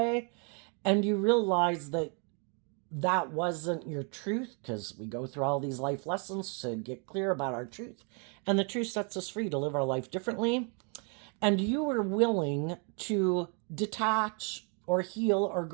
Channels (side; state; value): left; quieter; 37.9 dB